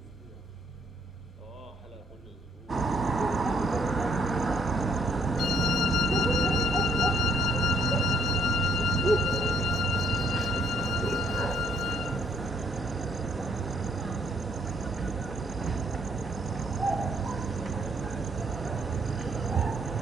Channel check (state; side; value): normal; both; correlation 0.68